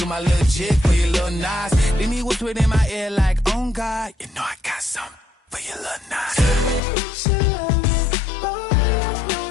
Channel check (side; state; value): right; drops out; at 6.8 s